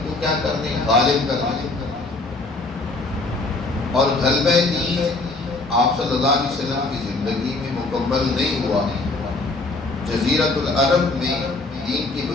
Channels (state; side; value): quieter; right; 3.3 dB